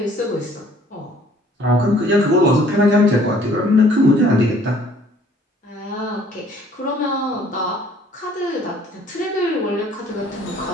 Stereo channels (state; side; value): normal; both; correlation 0.57